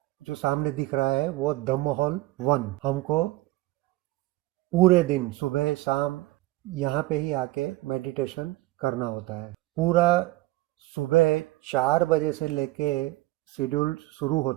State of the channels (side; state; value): left; quieter; 18.6 dB